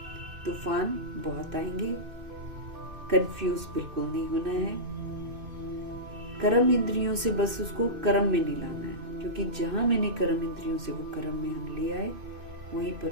तूफान बहुत आएंगे, कंफ्यूज बिल्कुल नहीं होना है। कर्म इंद्रियों से बस उसको कर्म में नहीं लाना है, क्योंकि जहां मैंने कर्म इंद्रियों से वो कर्म में हम ले आए, वहीं पर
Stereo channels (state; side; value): late; left; 2.6 ms